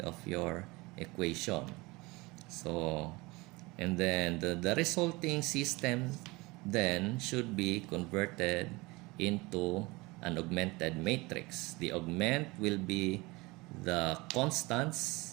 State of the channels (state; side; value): quieter; left; 23.3 dB